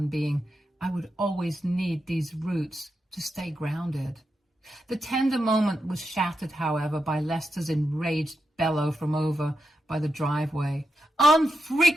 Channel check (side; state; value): both; normal; correlation 0.86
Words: being, I would always need these roots to stay grounded. The tender moment was shattered, however, by Lester's enraged bellow from over by the driveway.